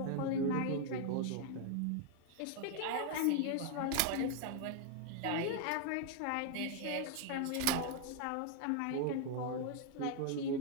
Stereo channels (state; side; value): different; both; correlation 0.00